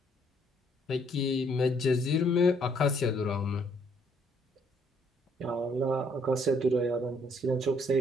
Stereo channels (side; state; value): both; normal; correlation 0.66